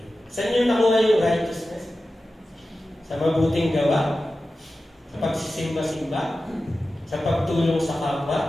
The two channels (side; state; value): both; normal; correlation 0.94